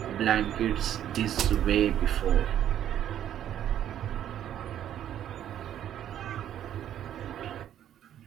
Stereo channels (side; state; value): left; quieter; 10.7 dB